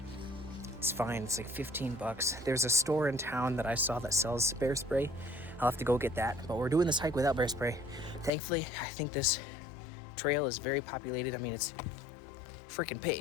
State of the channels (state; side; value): drops out; right; at 8.3 s